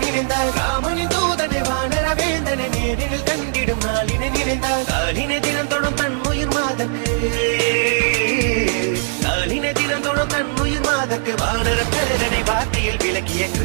நினைந்தார் ராமனின் தூதனை வானர வேந்தனை நேரில் கண்டிடும் நாளினை நினைந்தார் நாளினை தினம் தொடும் தன் உயிர் மாதக்கு நாளினை தினம் தொடும் தன் உயிர் மாதக்கு வானர பேரனை வார்த்தையில் விளக்கிய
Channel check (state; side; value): silent; left; 61 dB below the other